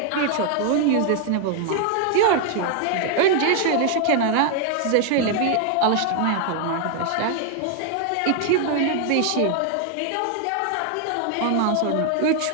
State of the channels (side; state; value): both; different; correlation 0.00